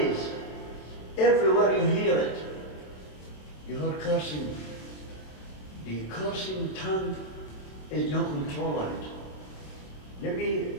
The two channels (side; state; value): right; late; 26 ms